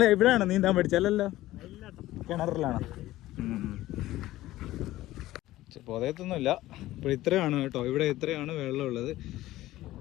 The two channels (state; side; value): quieter; right; 16.0 dB